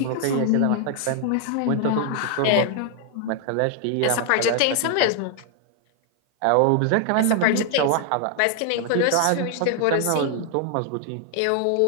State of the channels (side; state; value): both; different; correlation 0.00